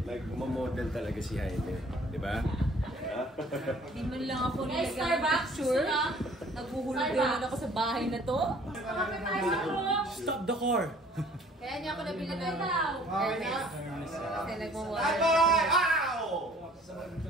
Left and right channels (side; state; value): both; normal; correlation 0.54